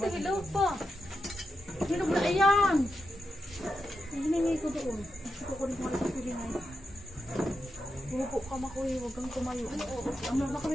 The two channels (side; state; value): both; normal; correlation 0.87